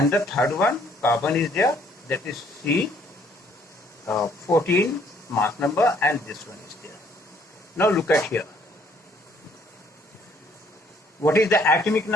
the third one, carbon, is there, that is C, 14 mass number, and this one is there. Now look at here. What is the atomic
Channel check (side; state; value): both; normal; correlation 0.63